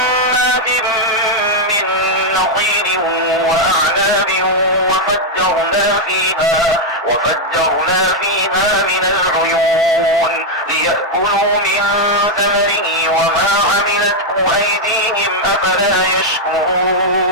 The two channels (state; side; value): normal; both; correlation -0.01